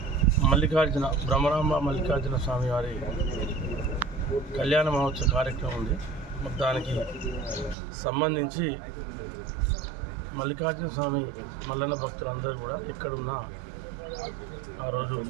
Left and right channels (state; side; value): drops out; left; at 7.8 s